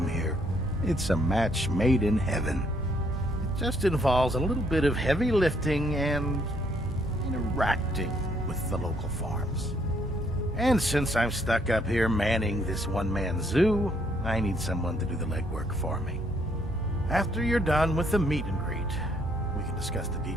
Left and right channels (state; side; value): normal; both; correlation 0.69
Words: here. It's a match made in heaven. It just involves a little bit of heavy lifting and interacting with the local farms. And since I'm stuck up here manning this one-man zoo, I need someone to do the legwork for me. After you're done with the meet and greet, we can discuss the